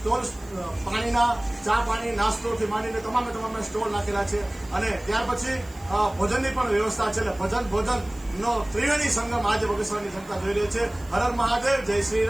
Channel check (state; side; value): noise; right; hiss, 25 dB below the sound